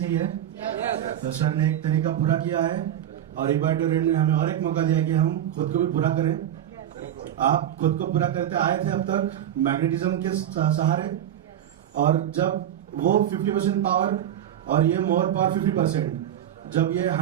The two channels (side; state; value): left; quieter; 10.8 dB